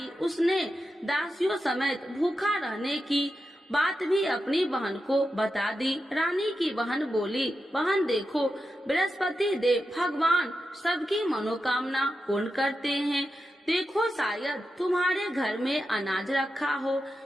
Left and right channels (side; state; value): both; normal; correlation 0.89